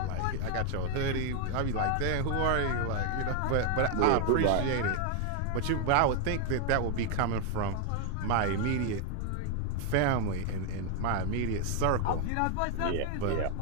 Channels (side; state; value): both; different; correlation 0.00